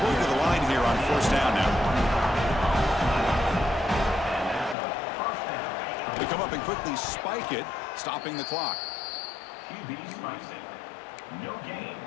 go to the line here on first down now. They come up and quickly spike it, stopping the clock. QB spicing. No gain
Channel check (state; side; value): drops out; right; at 4.8 s